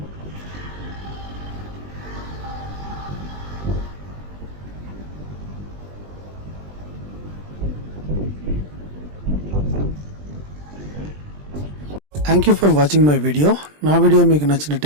Thank you for watching my video. నా వీడియో మీకు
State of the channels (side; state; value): left; late; 20 ms